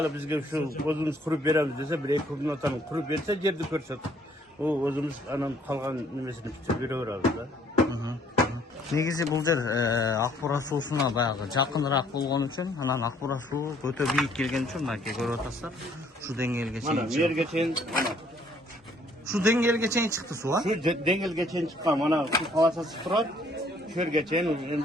bizga shu o'zimiz qurib beramiz desa, bir ikki kundan qurib bersa, yerni ko'rsatib, u o'zimiz anan qolgan nimesini tutib beraveramiz-da. Негизи бул жер Акбура суусуна баягы жакыныраак болгон үчүн, анан Акбура суу өтө бийик келген үчүн мынакей көрүп атасыздар. Шу деңгээлге чейин. Mana yerga чейин, mana Шу деңгээлге чейин чыкты суу, а? shu dengilga чейин chiqqan, mana shu palasasi turadi. Shu yerga чейин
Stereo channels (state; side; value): normal; both; correlation 0.62